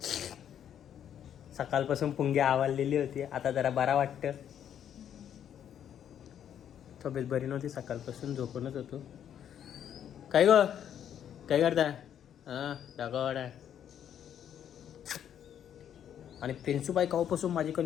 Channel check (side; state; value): right; quieter; 9.5 dB